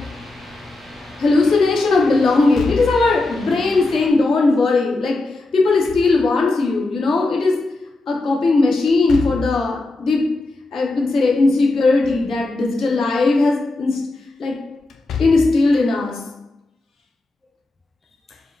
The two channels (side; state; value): right; quieter; 3.0 dB